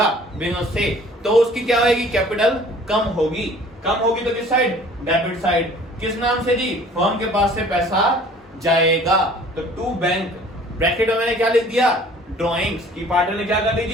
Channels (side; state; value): both; normal; correlation 0.51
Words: बिजनेस से तो उसकी क्या होगी, कैपिटल कम होगी। कम होगी तो किस साइड, डेबिट साइड। किस नाम से जी, फर्म के पास से पैसा जाएगा। तो टू बैंक, ब्रैकेट में मैंने क्या लिख दिया, ड्राइंग्स की पार्टनर ने क्या कर ली